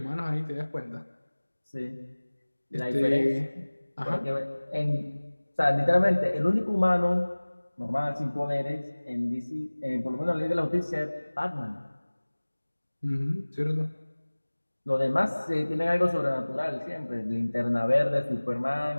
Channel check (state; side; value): inverted; both; correlation -1.00